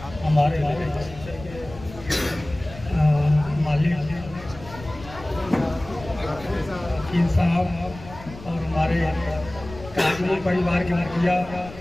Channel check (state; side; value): noise; left; rumble, 16 dB below the sound